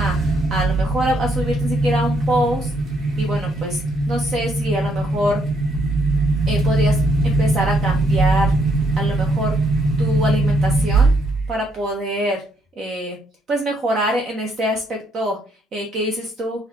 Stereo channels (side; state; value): both; normal; correlation 0.72